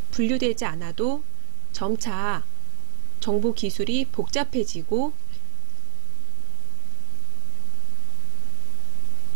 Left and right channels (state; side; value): silent; left; 57 dB below the other